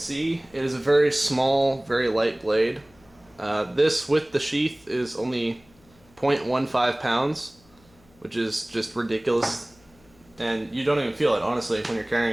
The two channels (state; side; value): noise; left; hum, 30 dB below the sound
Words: it is a very small, very light blade. This with the sheath is only 0.15 pounds, which is just ridiculous. And you don't even feel it, honestly, when you're